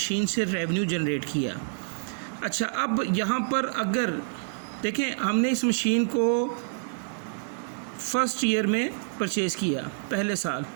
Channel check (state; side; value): silent; left; digital silence